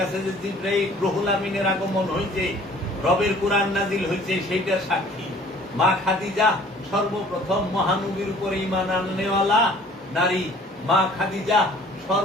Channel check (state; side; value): normal; both; correlation 0.52